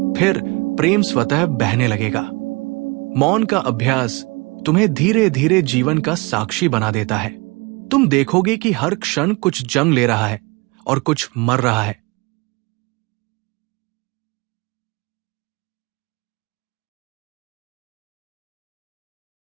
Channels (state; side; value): quieter; left; 27.0 dB